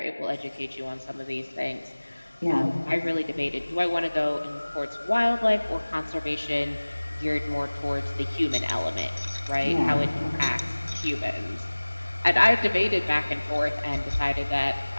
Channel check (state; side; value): inverted; both; correlation -1.00